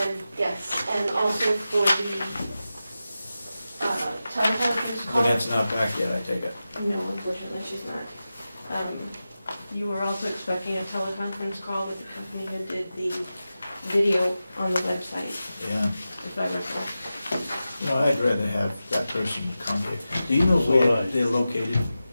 yes, and also for the teleconference call. But that's not back yet, I take it. No, unfortunately, she's not. You were also expecting a teleconference call with the company who did the video on the website, Yeah. if I recall. No, I'd rather have that person come here. Do you know So would I. where they're located?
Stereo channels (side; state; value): both; inverted; correlation -0.93